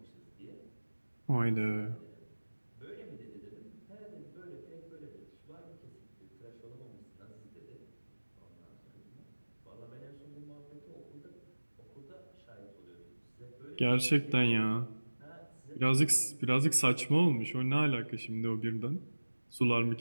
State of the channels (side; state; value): both; inverted; correlation -1.00